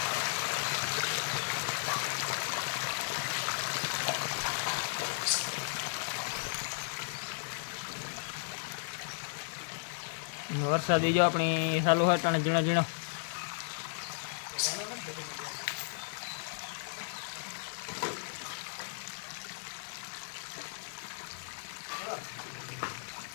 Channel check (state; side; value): silent; right; 54 dB below the other